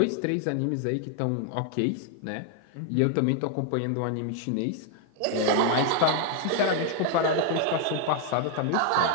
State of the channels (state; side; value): different; both; correlation 0.00